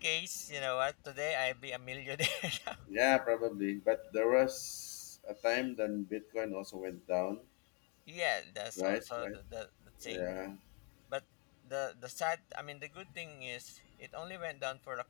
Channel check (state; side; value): quieter; right; 35.8 dB